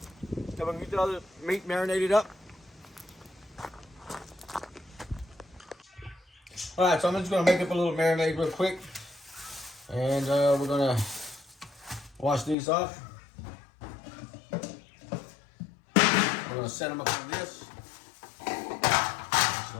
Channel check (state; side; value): drops out; right; at 12.6 s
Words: Then we're gonna get the other meat marinated up. All right, so I'm just gonna make up a little marinade real quick, and we're gonna wash these off. We're gonna set them up on this. It's